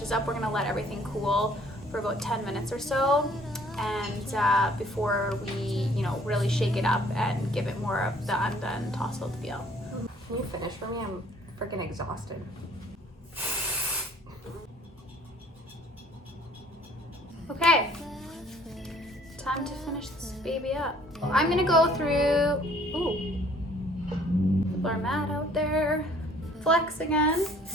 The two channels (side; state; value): both; normal; correlation 0.58